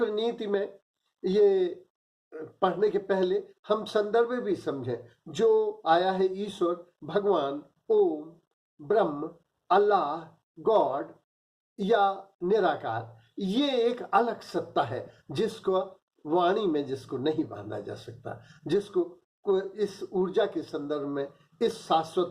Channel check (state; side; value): identical; both; correlation 1.00